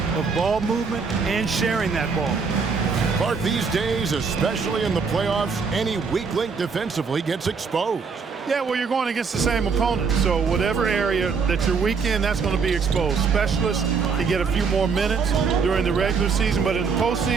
of ball movement and sharing that ball. Clark, these days, especially in the playoffs, any weak link defensively gets exposed. Yeah, well, you're going against the same opponent, so whatever area that you're weak in, that's going to be exposed. Specialists can get a few more minutes during the regular season, but in the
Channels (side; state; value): left; quieter; 5.4 dB